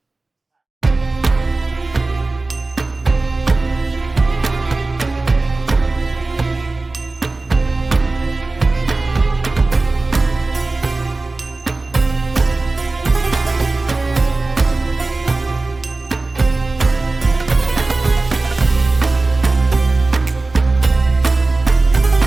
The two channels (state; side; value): quieter; left; 3.3 dB